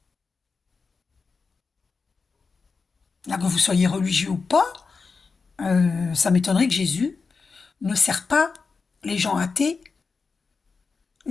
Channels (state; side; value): quieter; right; 4.7 dB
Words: Là, que vous soyez religieux ou pas, ça m'étonnerait que Jésus ne sert pas les gens athées,